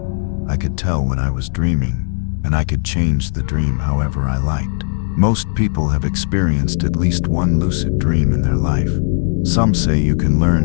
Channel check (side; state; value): right; silent; 64 dB below the other